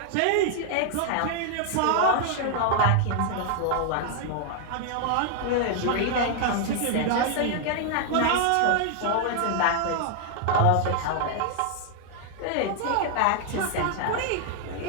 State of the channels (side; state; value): both; different; correlation 0.00